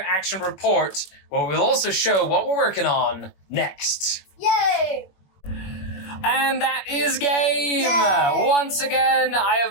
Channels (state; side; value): late; right; 21 ms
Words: report where we'll also show what we're working on next. Yay! And that is game. Yay. Once again, I